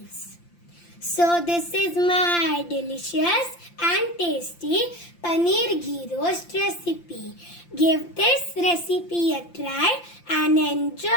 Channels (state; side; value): late; right; 5.8 ms